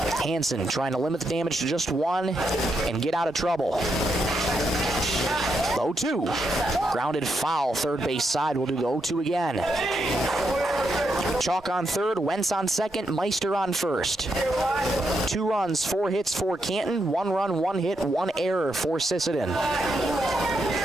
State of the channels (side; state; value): both; normal; correlation 0.81